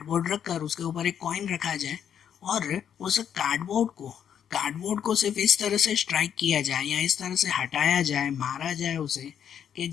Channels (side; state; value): right; quieter; 8.8 dB